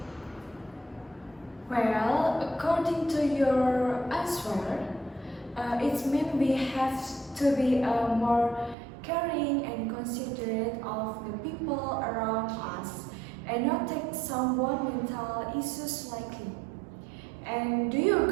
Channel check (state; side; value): drops out; left; at 8.8 s